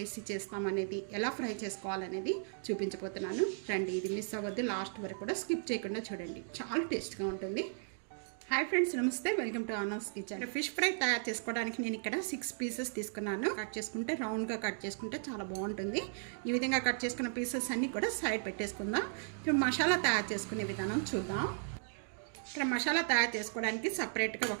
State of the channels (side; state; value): left; silent; digital silence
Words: చేస్తామనేది, ఎలా ఫ్రై చేసుకోవాలనేది చూపించబోతున్నాను. రండి, ఇది మిస్ అవ్వద్దు, లాస్ట్ వరకు కూడా స్కిప్ చేయకుండా చూడండి. చాలా టేస్ట్గా ఉంటుంది. హాయ్ ఫ్రెండ్స్, నమస్తే, welcome to honours kitchen. Fish fry తయారు చేసుకోవడానికి నేను ఇక్కడ 6 పీసెస్ తీసుకున్నాను. కట్ చేసుకుంటే రౌండ్గా కట్ చేసుకుంటే చాలా బాగుంటుంది. ఈ విధంగా కట్ చేసుకున్న పీసెస్ అన్నీ కూడా సైడ్ పెట్టేసుకుందాం. ఇప్పుడు మసాలా తయారు చేసుకునే విధానం చూద్దాం. ఇక్కడ మసాలా తయారు చేసుకోవడానికి సపరేట్గా